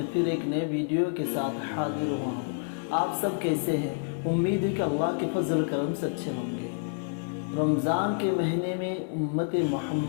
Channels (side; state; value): right; silent; 59 dB below the other